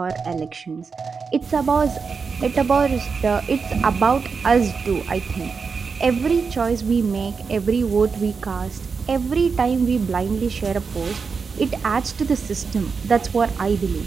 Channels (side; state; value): left; quieter; 5.3 dB